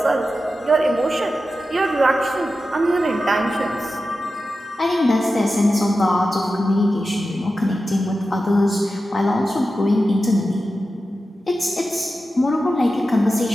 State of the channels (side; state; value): both; normal; correlation 0.92